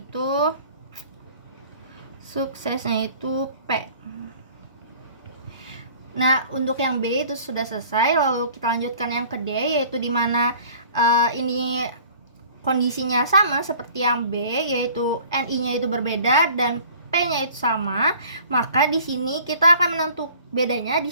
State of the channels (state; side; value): inverted; both; correlation -0.49